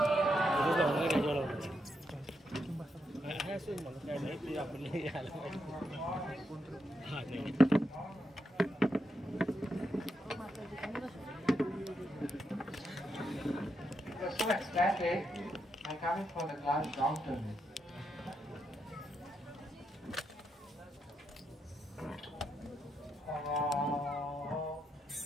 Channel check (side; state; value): both; normal; correlation 0.82